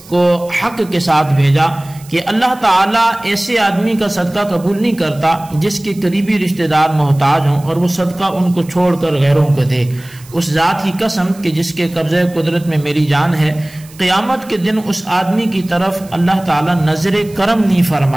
کو حق کے ساتھ بھیجا کہ اللہ تعالیٰ ایسے آدمی کا صدقہ قبول نہیں کرتا جس کے قریبی رشتہ دار محتاج ہوں اور وہ صدقہ ان کو چھوڑ کر غیروں کو دے۔ اس ذات کی قسم کہ جس کے قبضہ قدرت میں میری جان ہے، قیامت کے دن اس آدمی کی طرف اللہ تعالیٰ نظر کرم نہیں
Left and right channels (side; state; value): right; noise; hiss, 23 dB below the sound